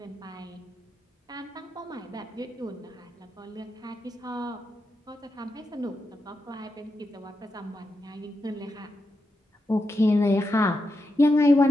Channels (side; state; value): both; normal; correlation 0.86